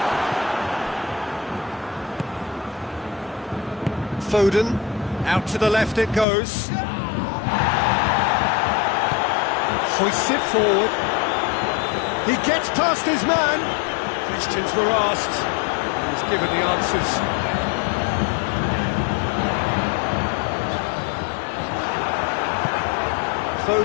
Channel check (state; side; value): drops out; right; at 6.2 s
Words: Foden, out to the left it goes. Hoists it forward. He gets past his man. Questions were asked. He's given the answers.